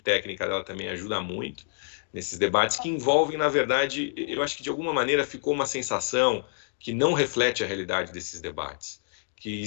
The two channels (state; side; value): silent; right; digital silence